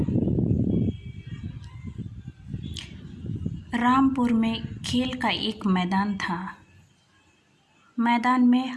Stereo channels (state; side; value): identical; both; correlation 1.00